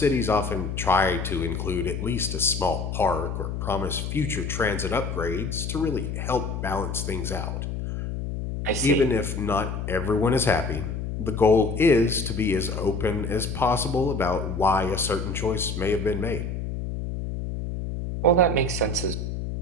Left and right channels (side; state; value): left; noise; hum, 4 dB below the sound